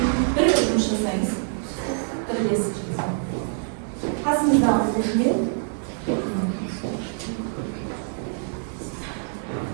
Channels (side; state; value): left; silent; digital silence